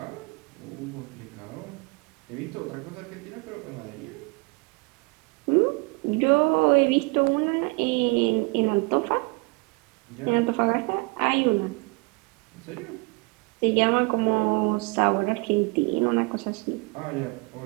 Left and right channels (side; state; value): left; quieter; 28.3 dB